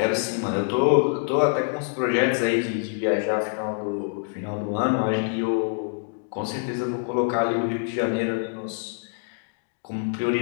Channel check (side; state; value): right; silent; digital silence